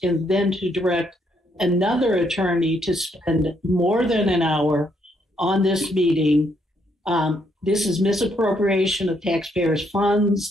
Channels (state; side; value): normal; both; correlation 0.73